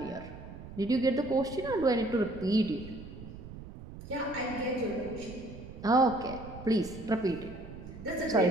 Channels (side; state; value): right; noise; rumble, 14 dB below the sound